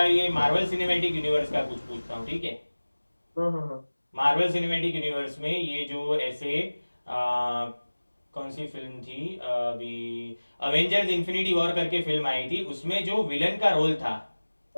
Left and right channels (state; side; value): inverted; both; correlation -1.00